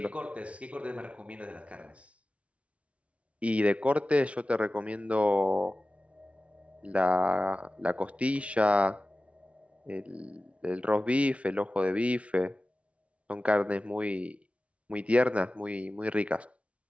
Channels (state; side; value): late; left; 0.063 ms